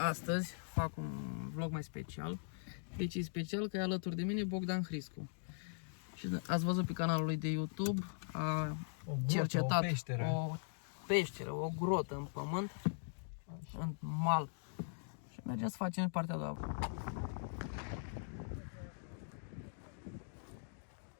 fac un vlog mai special. Deci e special că e alături de mine Bogdan Hriscu. Și ați văzut pe canalul lui de YouTube, a cercetat o peșteră, o grotă în pământ, în mal. Și mergem să facem partea a doua.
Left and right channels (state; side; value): silent; right; digital silence